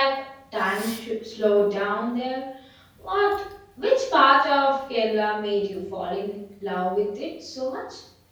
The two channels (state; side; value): identical; both; correlation 1.00